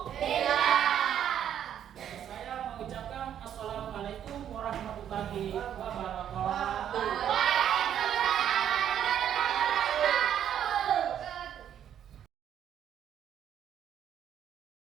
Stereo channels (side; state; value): left; quieter; 9.8 dB